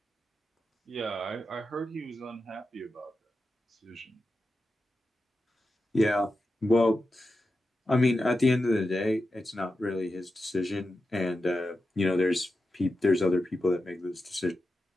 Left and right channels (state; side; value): normal; both; correlation 0.90